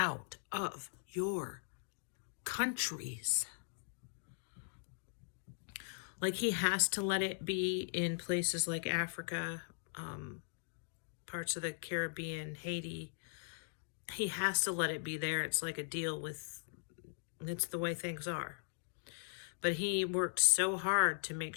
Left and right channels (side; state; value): right; silent; digital silence